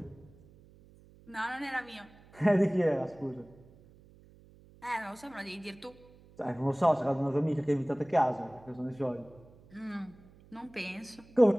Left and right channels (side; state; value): right; noise; hum, 25 dB below the sound